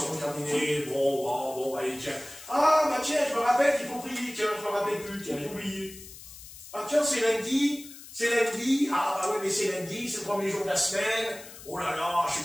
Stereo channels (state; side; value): noise; left; hiss, 16 dB below the sound